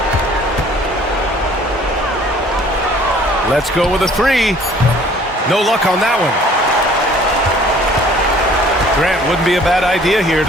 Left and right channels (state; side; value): normal; both; correlation 0.54